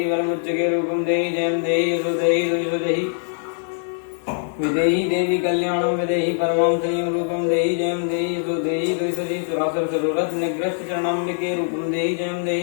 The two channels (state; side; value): silent; right; digital silence